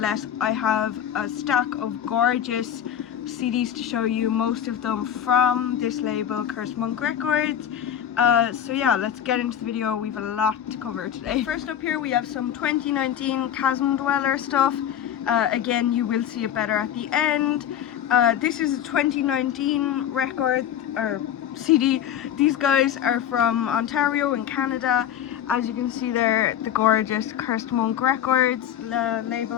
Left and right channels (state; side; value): quieter; right; 10.1 dB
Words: I have a stack of gorgeous CDs to show you, most of them from this label, Cursed Monk Records. So yeah, let's get into the video. We have a lot to cover today. First up here we have some 2019 Chasm Dweller stuff. Again, you will see it better at the end. This is a 2019 record, or CD. These guys are from Ontario in Canada. As you can see there, the gorgeous Cursed Monk Records